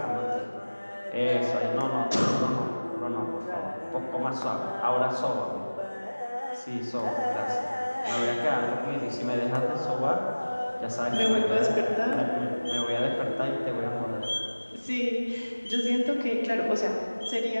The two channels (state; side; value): inverted; both; correlation -1.00